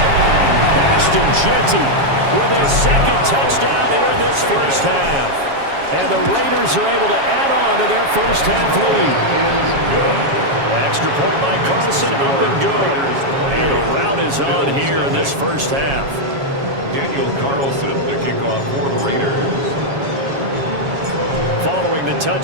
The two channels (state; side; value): late; left; 7.3 ms